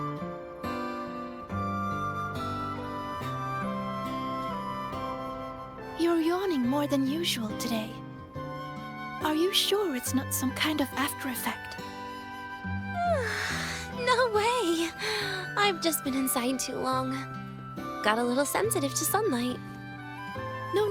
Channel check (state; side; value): identical; both; correlation 1.00